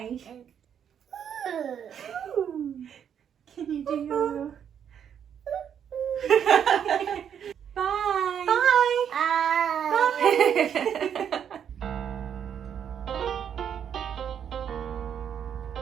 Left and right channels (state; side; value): quieter; left; 8.5 dB